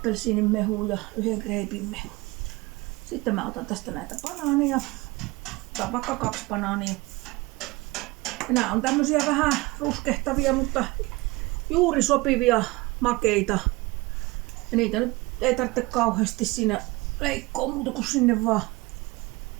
mehua ja 1 kreipin mehu. Sitten mä otan tästä näitä banaaneja. Otan vaikka 2 banaania. Ja nämä on tämmösiä vähän ruskehtavia, mutta juuri sopivia makeita. Ja niitä nyt ei tarvitse kauheasti siinä leikkoa muuta kuin sinne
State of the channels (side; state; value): left; quieter; 22.5 dB